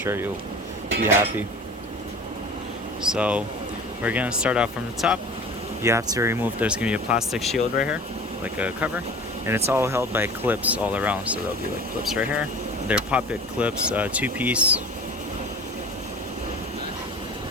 you'll be happy. So we're going to start off from the top. You have to remove, there's going to be a plastic shield right here, like a cover, and it's all held by clips all around, so there'll be like clips right here. They're pop-it clips, 2-piece.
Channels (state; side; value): normal; both; correlation 0.40